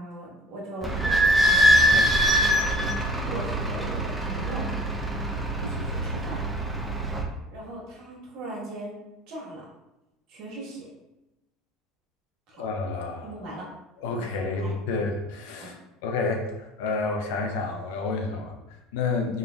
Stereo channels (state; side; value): normal; both; correlation 0.48